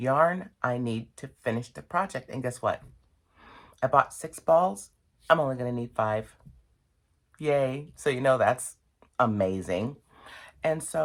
I need to finish the project. And guess what? I bought 6 balls. I'm only going to need 5. Yay. So you know that's amazing. And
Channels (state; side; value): identical; both; correlation 1.00